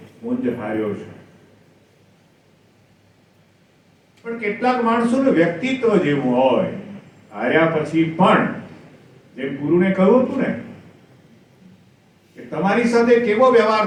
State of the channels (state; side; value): identical; both; correlation 1.00